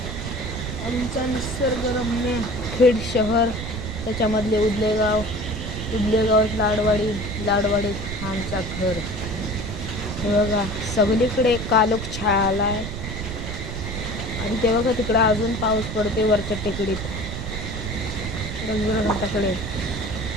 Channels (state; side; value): noise; right; rumble, 6 dB below the sound